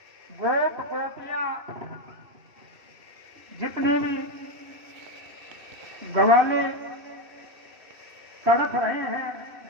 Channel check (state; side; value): late; left; 2.6 ms